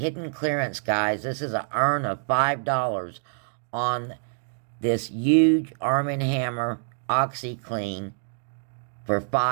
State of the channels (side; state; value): left; silent; digital silence